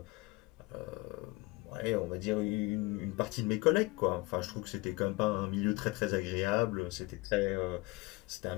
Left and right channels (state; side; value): quieter; right; 23.3 dB